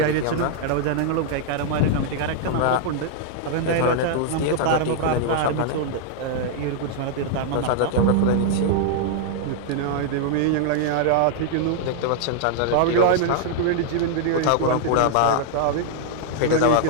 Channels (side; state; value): both; different; correlation -0.01